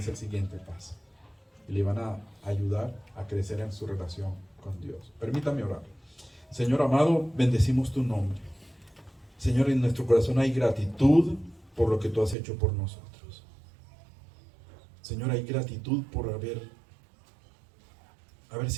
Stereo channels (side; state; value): left; drops out; at 12.4 s